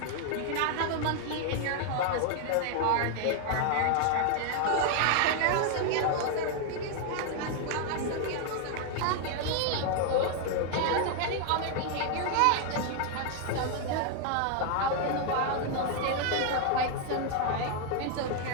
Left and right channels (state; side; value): different; both; correlation 0.00